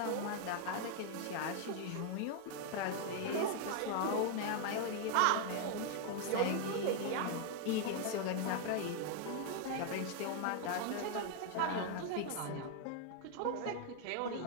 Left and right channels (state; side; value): different; both; correlation 0.00